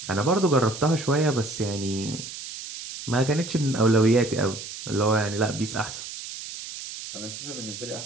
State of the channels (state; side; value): noise; right; hiss, 10 dB below the sound